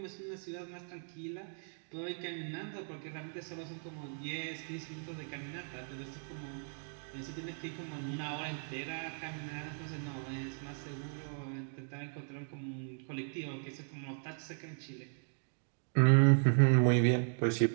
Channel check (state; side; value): silent; left; digital silence